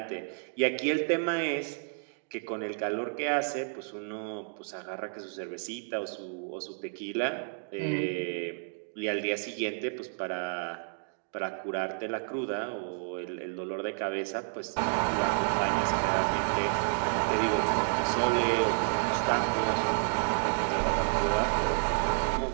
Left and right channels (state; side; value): silent; left; digital silence